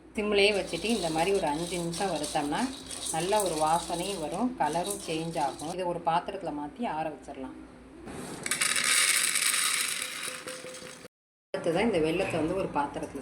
சிம்லேயே வச்சுட்டு இந்த மாதிரி ஒரு 5 நிமிஷம் வறுத்தோம்னா நல்ல ஒரு வாசனையும் வரும், கலரும் சேஞ்ச் ஆகும். இதை ஒரு பாத்திரத்தில் மாற்றி ஆற வச்சிடலாம். அடுத்ததான் இந்த வெல்லத்தை வந்து ஒரு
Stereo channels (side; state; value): both; identical; correlation 1.00